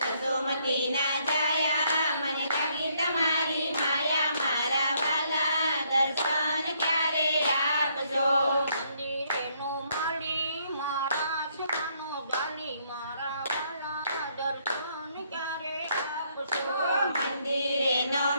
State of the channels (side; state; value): both; inverted; correlation -0.70